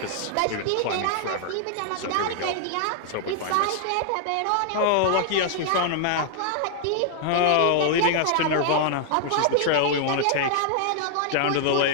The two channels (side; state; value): both; different; correlation 0.00